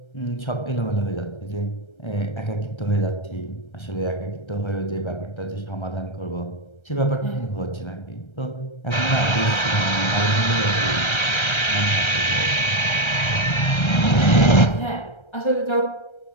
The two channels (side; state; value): right; late; 1.3 ms